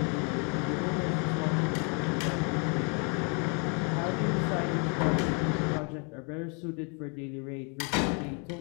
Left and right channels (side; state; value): right; quieter; 36.6 dB